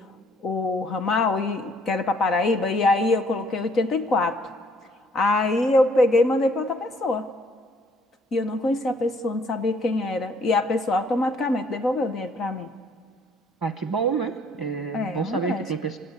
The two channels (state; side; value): normal; both; correlation 0.62